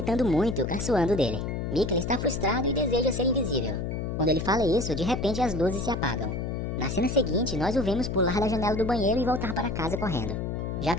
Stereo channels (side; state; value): left; noise; hum, 3 dB below the sound